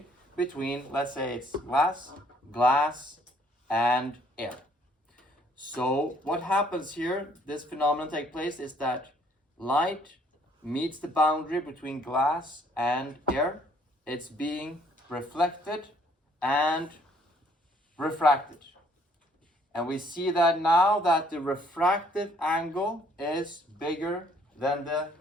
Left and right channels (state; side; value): normal; both; correlation 0.63